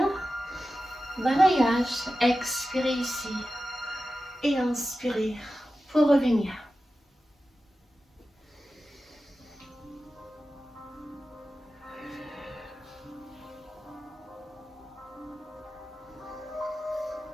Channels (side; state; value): both; normal; correlation 0.93